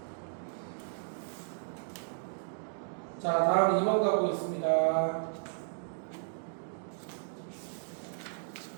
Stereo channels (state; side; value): silent; left; digital silence